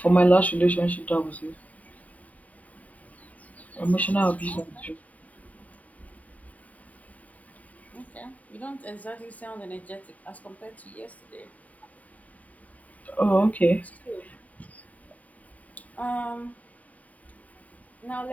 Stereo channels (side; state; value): right; late; 0.071 ms